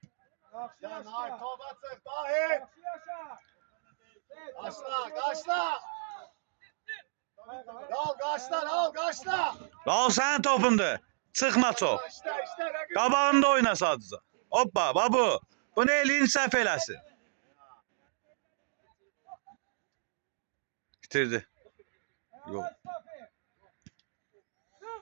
Yaxşı Ya yaşa. Nahit topa çık, Nahit. Yaxşı yaşa. Kaçla, kaçla. Al kaçla, al kaçla. Raul sənin topundur. Çıxma çox. İşte, işte. rakip. Qabağında oyna sadəcə. Hoppa, babu. Bu ne elin səhv eləsin. Bitirdi. Yok.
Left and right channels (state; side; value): silent; left; digital silence